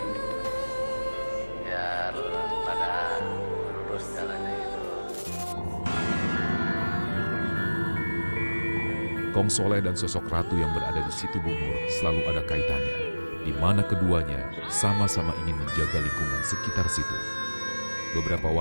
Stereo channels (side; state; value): both; inverted; correlation -1.00